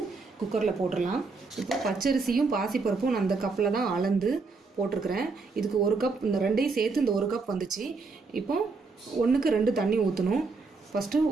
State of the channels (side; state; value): left; quieter; 4.2 dB